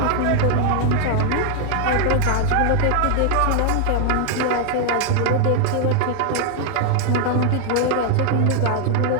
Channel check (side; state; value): both; different; correlation 0.00